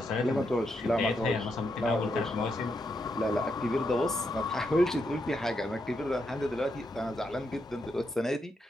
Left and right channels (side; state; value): both; normal; correlation 0.81